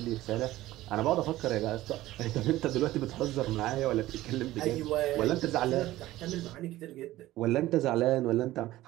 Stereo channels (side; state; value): left; quieter; 16.1 dB